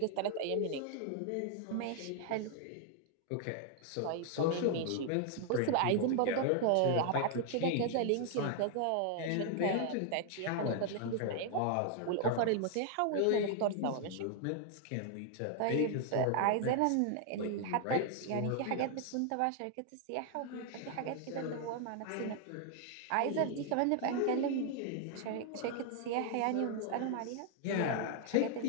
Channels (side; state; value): both; different; correlation 0.00